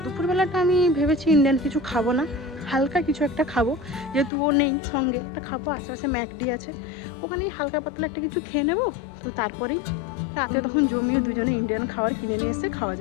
দুপুরবেলাটা আমি ভেবেছি ইন্ডিয়ান কিছু খাবো না, হালকা কিছু একটা খাবো, যেহেতু ও নেই সঙ্গে। একটা খাবো, আশেপাশে ম্যাকডি আছে, ওখানেই হালকা পাতলা একটা কিছু খেয়ে নেবো। তো তারপরেই রাতে তখন জমিয়ে দুজনে ইন্ডিয়ান খাবার কিনে নিয়ে এসে খাওয়া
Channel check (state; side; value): drops out; right; at 4.3 s